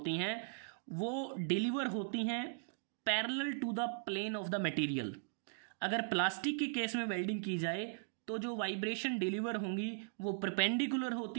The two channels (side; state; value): left; silent; digital silence